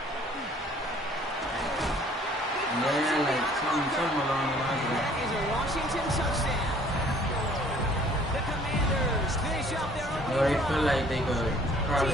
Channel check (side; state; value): both; normal; correlation 0.56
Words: Yeah, like something along the lines of that. That is a Washington touchdown. The Commanders finish up their opening Or they drive. feel like they could